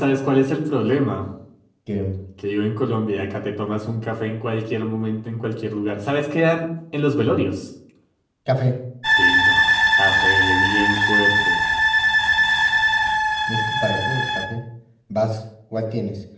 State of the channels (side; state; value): both; identical; correlation 1.00